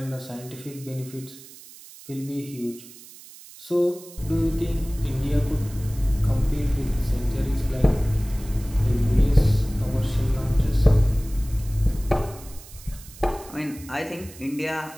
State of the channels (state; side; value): noise; right; hiss, 19 dB below the sound